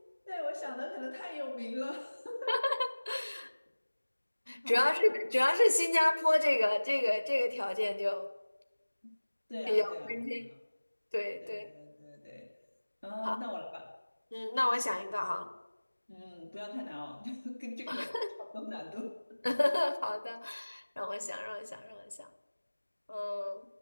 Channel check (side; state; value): both; inverted; correlation -1.00